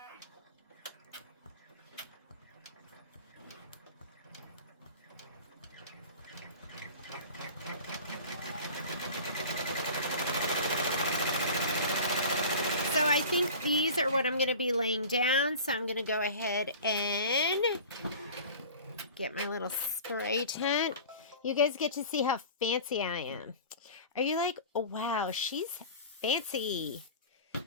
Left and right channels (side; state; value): both; inverted; correlation -0.38